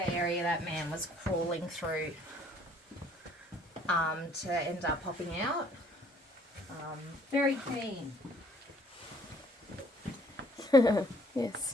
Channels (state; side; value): normal; both; correlation 0.60